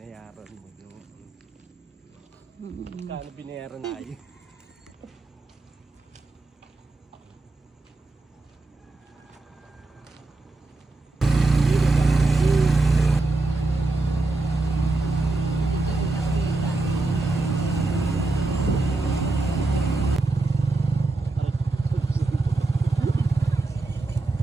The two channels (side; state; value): left; quieter; 3.1 dB